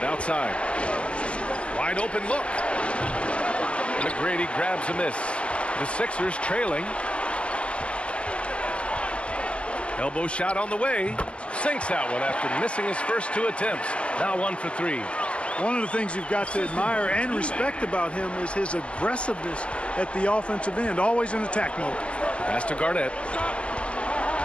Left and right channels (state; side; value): late; right; 0.055 ms